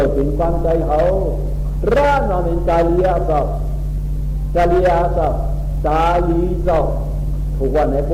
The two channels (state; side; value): identical; both; correlation 1.00